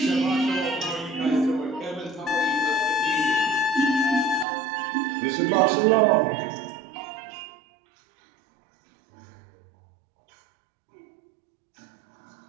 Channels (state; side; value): drops out; left; at 4.5 s